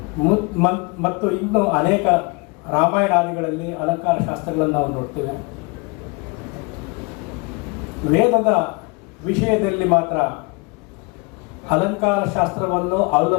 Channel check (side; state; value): right; quieter; 29.5 dB